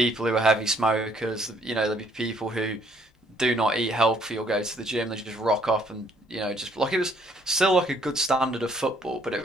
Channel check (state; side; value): normal; both; correlation 0.65